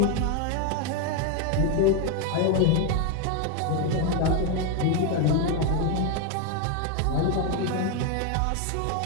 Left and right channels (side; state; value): both; different; correlation 0.01